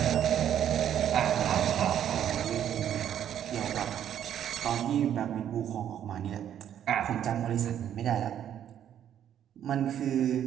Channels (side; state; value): left; quieter; 10.1 dB